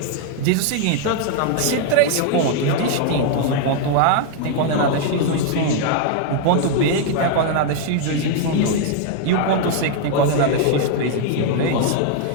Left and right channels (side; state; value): both; different; correlation 0.00